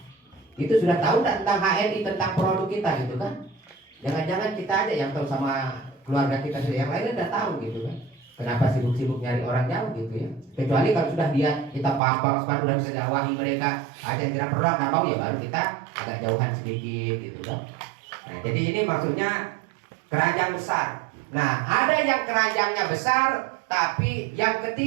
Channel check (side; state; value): left; drops out; at 12.0 s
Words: Itu sudah tahu tentang HNI, tentang produk kita gitu kan. Jangan-jangan kita aja yang tahu sama keluarga kita sendiri, yang lainnya udah tahu gitu kan. Kenapa sibuk-sibuk nyari orang jauh gitu ya. Kecuali kalau sudah dia kita paham udah bisa dakwahi mereka, ada yang tidak perlu nggak mau ya baru kita agak jauhan sedikit gitu kan. Nah jadi ini maksudnya keranjang besar. Nah, ada yang keranjangnya besar, tapi yang